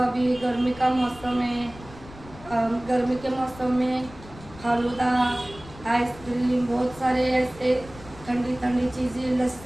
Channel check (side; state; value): left; noise; rumble, 18 dB below the sound